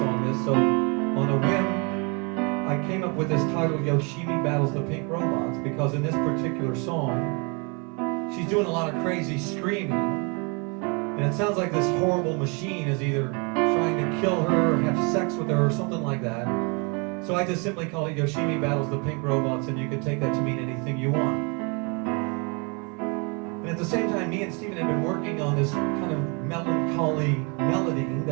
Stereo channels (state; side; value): quieter; left; 32.4 dB